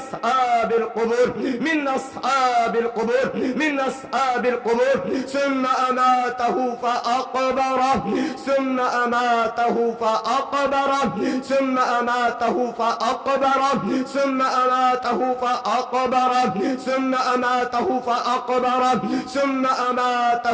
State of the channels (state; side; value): identical; both; correlation 1.00